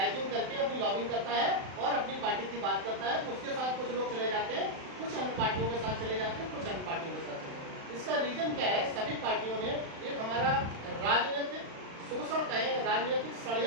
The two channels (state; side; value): late; left; 36 ms